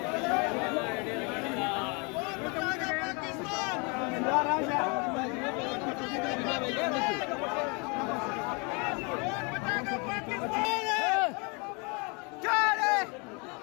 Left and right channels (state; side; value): quieter; right; 31.8 dB